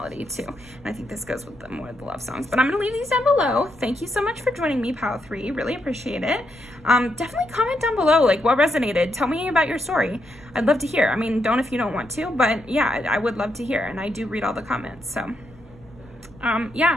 too. And I think this goes with the more of the love songs. But I'm gonna leave these down below. Thank you so much for joining me, Pile 3. Really appreciate it. Definitely comment down below, like, what resonated. Tell me about your story. I'd love to hear. I mean, don't if you don't want to, but yeah, I would love to hear. And I do read all the comments, so.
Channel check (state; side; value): noise; left; rumble, 24 dB below the sound